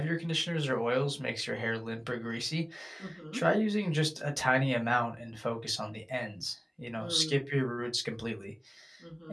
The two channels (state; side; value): identical; both; correlation 1.00